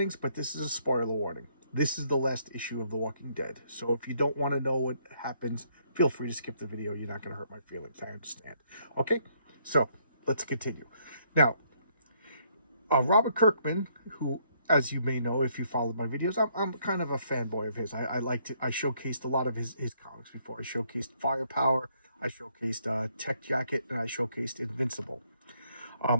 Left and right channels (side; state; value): both; inverted; correlation -0.69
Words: but this is a spoiler warning. This is the last issue of The Walking Dead. So if you don't want to know what happens, feel free to skip the video. You're not going to hurt my feelings. I understand. Okay? So, let's continue. Now, Robert Kirkman, who, as you may know if you followed my videos, I'm kind of a fanboy of his. I showcased a lot of his comics before. I showcased Firepower, I showcased Tech Jacket, and I showcased Invincible.